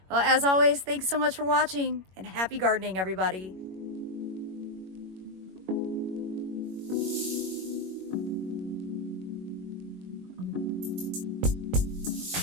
Well, as always, thanks so much for watching and happy gardening, everybody.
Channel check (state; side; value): late; left; 21 ms